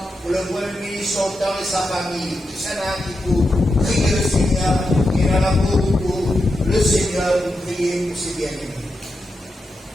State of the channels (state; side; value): normal; both; correlation 0.87